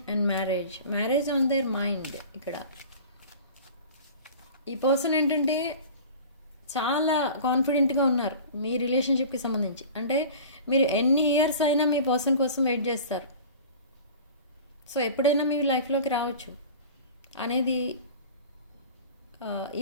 and marriage on their mind. ఇక్కడ ఈ person ఏంటంటే చాలా కాన్ఫిడెంట్గా ఉన్నారు మీ రిలేషన్షిప్కి సంబంధించి. అంటే మీరు ఎన్ని ఇయర్స్ అయినా మీ పర్సన్ కోసం వెయిట్ చేస్తారు. సో ఎప్పుడైనా మీ లైఫ్లోకి రావచ్చు అనేది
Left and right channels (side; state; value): both; inverted; correlation -0.39